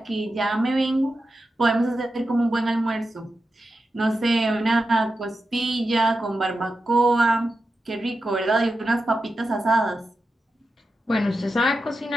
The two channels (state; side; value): normal; both; correlation 0.90